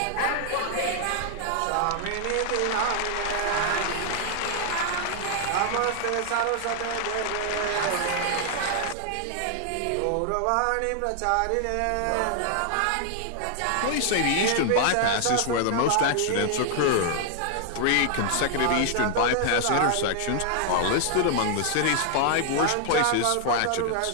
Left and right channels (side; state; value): both; different; correlation 0.00